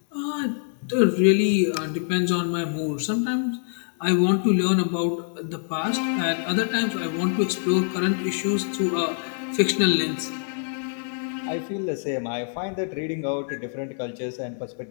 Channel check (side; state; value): right; silent; 62 dB below the other